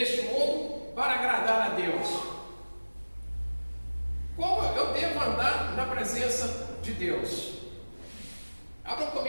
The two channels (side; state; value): both; inverted; correlation -1.00